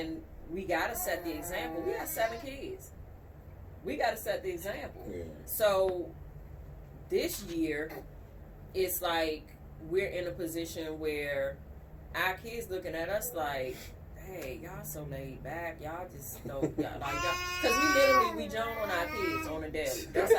we gotta set the example. We got 7 kids. We gotta set the example. Yeah. So this year, it's like we're in a position where our kids looking at us like, hey, y'all so laid back. Y'all just don't, because we joan on our kids on a daily. That's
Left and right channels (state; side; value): identical; both; correlation 1.00